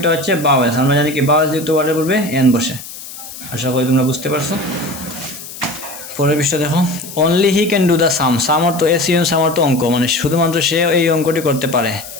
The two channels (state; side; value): noise; left; hiss, 13 dB below the sound